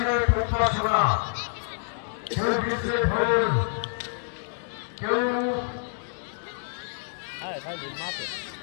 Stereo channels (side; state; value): right; silent; digital silence